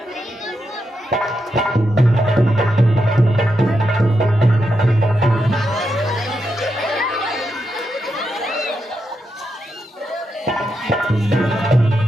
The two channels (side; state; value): both; normal; correlation 0.84